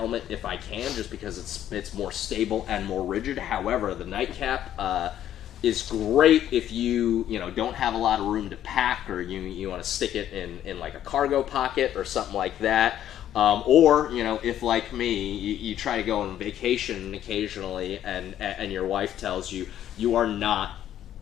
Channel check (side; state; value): right; quieter; 11.3 dB